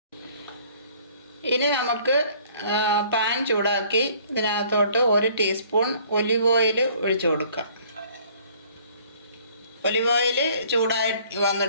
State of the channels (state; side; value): inverted; both; correlation -0.57